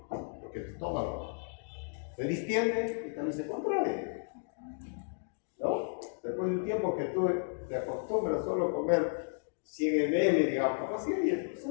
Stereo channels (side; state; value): right; silent; digital silence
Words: porque el estómago se distiende y también se contrae, ¿no? Después de un tiempo que tú te acostumbras solo a comer 100 ml, digamos, así, y se